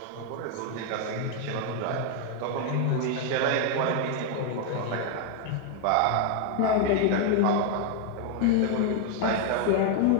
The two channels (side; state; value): both; different; correlation 0.01